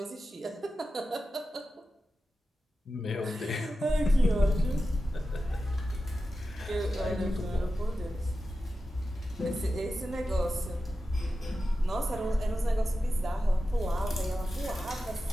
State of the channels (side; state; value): both; normal; correlation 0.92